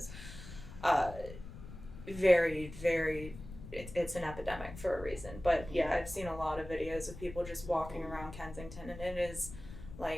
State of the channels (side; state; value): left; noise; rumble, 13 dB below the sound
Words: very, very, it's an epidemic for a reason. But yeah, I've seen a lot of videos of people just walking around Kensington, and it is